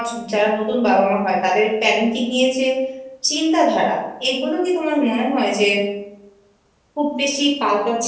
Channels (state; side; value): identical; both; correlation 1.00